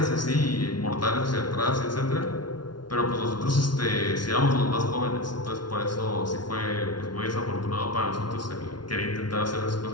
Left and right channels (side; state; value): right; late; 0.71 ms